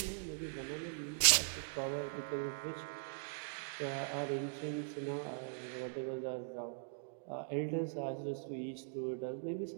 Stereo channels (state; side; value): silent; left; digital silence